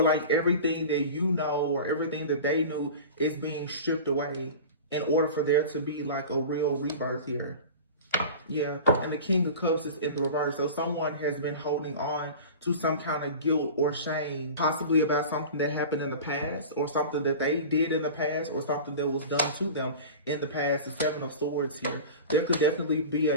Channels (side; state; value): both; inverted; correlation -0.35